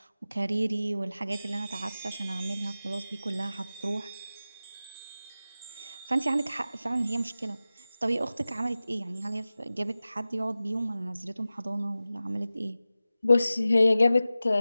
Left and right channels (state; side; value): inverted; both; correlation -0.95